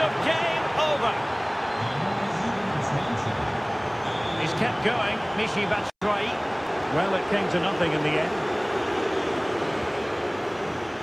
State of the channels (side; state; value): both; identical; correlation 1.00